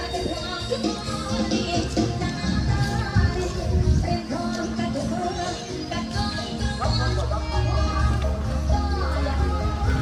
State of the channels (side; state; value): both; identical; correlation 1.00